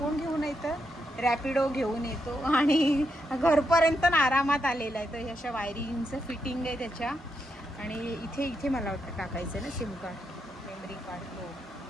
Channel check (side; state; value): both; normal; correlation 0.82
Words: घेऊन येतं रॅपिडो घेऊन येतो आणि घरपर्यंत आरामात आलेला आहे. तर ह्या अशा वायरिंगचं फिटिंग आहे त्याच्या आणि इथे मला वाटतं टाकायचं आहे ना सिम कार्ड मेमरी कार्ड तो